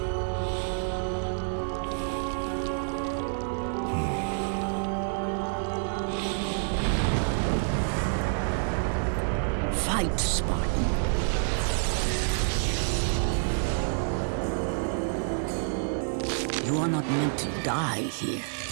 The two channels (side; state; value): left; silent; digital silence